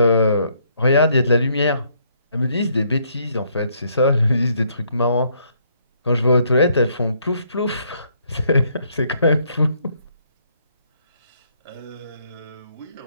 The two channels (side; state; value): both; inverted; correlation -0.69